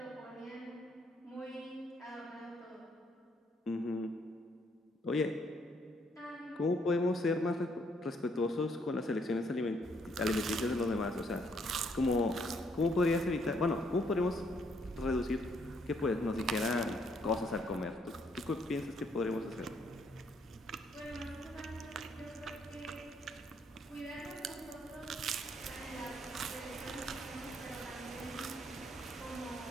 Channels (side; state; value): both; normal; correlation 0.70